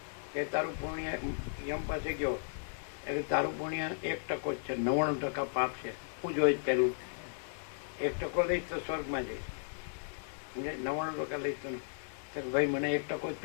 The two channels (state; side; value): silent; right; digital silence